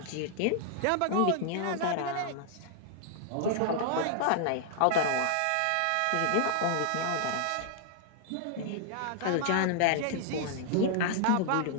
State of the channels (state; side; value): different; both; correlation 0.00